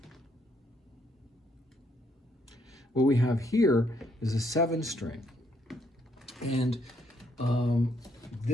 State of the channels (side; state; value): both; normal; correlation 0.72